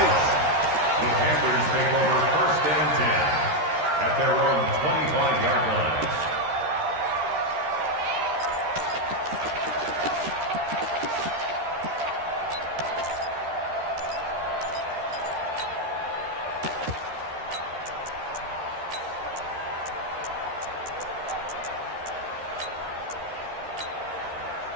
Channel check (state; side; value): late; left; 13 ms